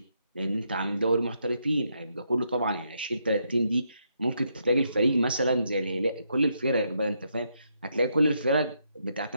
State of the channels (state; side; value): inverted; both; correlation -0.78